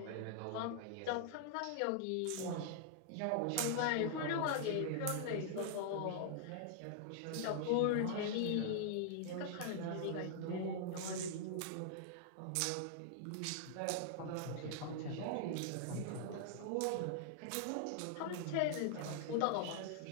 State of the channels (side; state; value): both; different; correlation -0.01